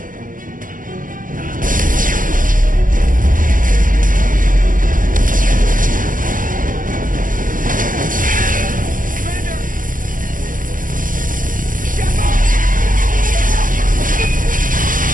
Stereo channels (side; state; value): left; late; 0.39 ms